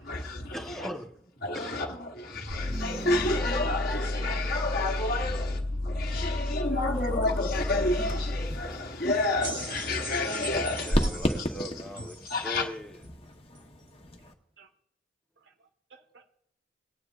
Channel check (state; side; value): normal; both; correlation 0.49